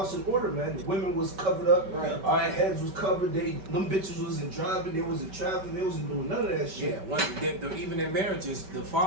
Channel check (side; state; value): left; late; 5.2 ms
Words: in order, man. The women was covered up. Right. All right, heads was covered. Them bitches wasn't driving. They wasn't traveling. They wasn't doing none of that shit. Yeah, even in marriages, the